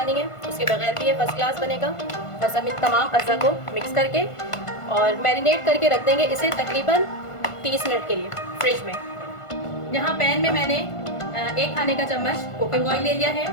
नहीं है, उसके बगैर भी ये फर्स्ट क्लास बनेगा। बस हम इन तमाम अज़ा को मिक्स करके और मैरिनेट करके रख देंगे इसे तकरीबन 30 मिनट के लिए फ्रिज में। यहाँ पैन में मैंने 1 खाने का चम्मच कुकिंग ऑयल ले लिया है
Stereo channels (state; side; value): late; right; 1.5 ms